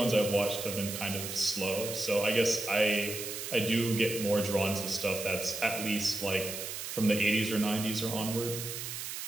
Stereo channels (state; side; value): noise; right; hiss, 6 dB below the sound